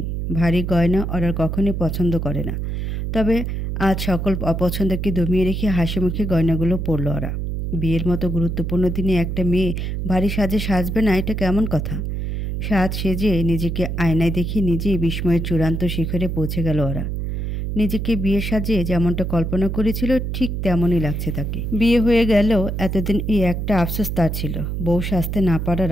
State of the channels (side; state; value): right; noise; hum, 3 dB below the sound